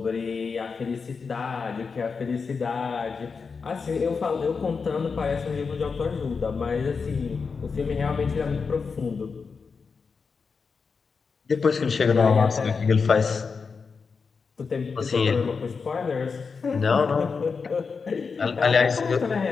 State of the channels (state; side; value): quieter; right; 5.2 dB